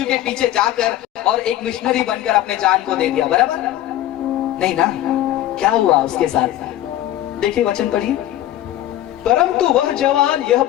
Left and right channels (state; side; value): quieter; right; 13.5 dB